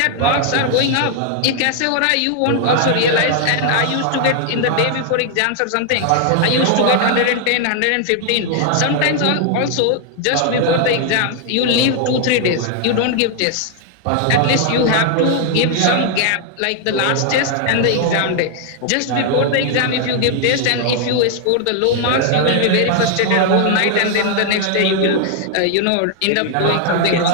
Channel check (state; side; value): different; both; correlation 0.00